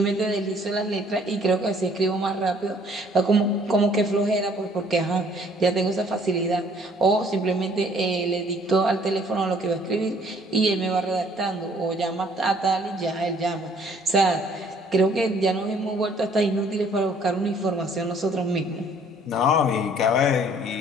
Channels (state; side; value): normal; both; correlation 0.60